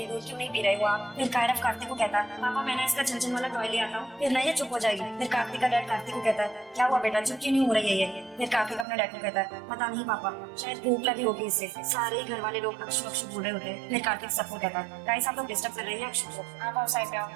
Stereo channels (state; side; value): drops out; left; at 8.8 s